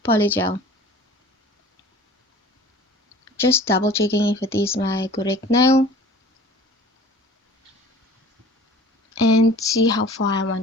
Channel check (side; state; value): both; normal; correlation 0.45